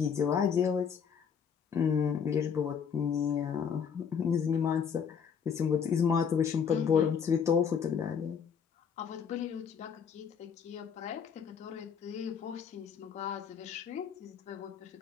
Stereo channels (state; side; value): quieter; right; 7.0 dB